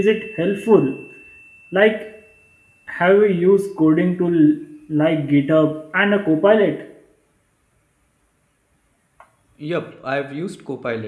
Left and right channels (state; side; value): identical; both; correlation 1.00